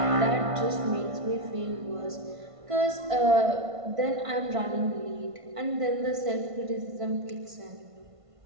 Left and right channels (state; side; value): late; left; 1.5 ms